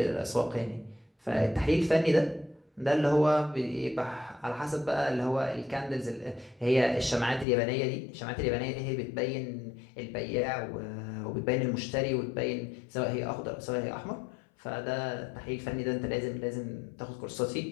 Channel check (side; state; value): right; drops out; at 7.5 s